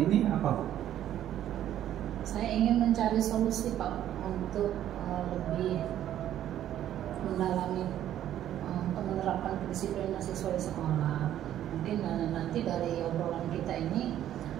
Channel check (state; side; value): quieter; left; 11.6 dB